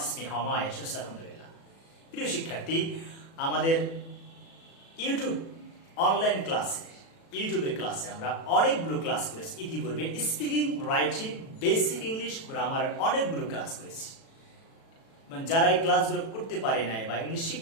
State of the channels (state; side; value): late; right; 36 ms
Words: me how am I, I should say alhamdulillah. প্রিয় শিক্ষার্থী, আমাদের ইউটিউব অনলাইন ক্লাসে ইউটিউবের ক্লাসে আমরা অনেকগুলো ক্লাস করেছি ইতিপূর্বে। স্পিকিং, রাইটিং, বেসিক ইংলিশ, গ্রামারের অনেকগুলো ক্লাস করেছি। যারা এই ক্লাসগুলো করতে পারে নাই বা ইংলিশ